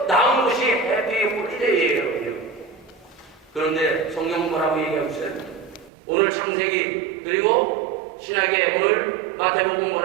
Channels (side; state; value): left; drops out; at 5.9 s